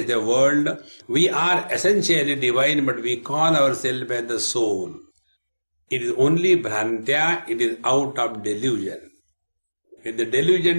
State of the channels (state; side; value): inverted; both; correlation -1.00